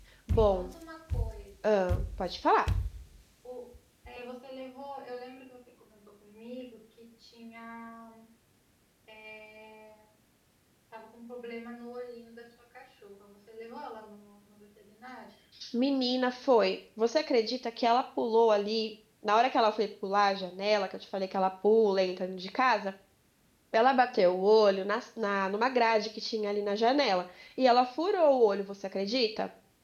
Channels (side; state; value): both; identical; correlation 1.00